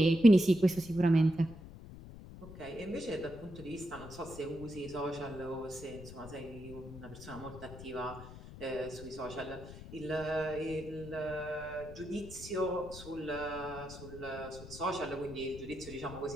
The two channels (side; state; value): left; noise; rumble, 14 dB below the sound